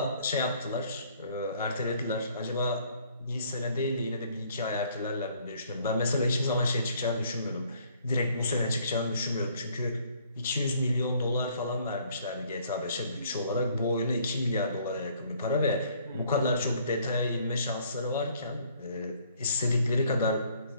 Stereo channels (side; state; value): both; inverted; correlation -0.61